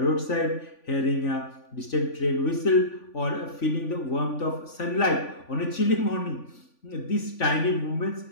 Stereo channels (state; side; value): late; right; 3.5 ms